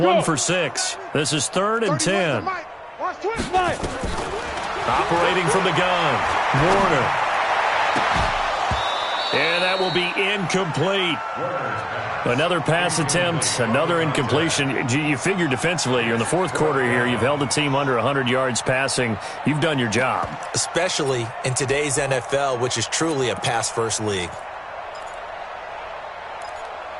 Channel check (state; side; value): identical; both; correlation 1.00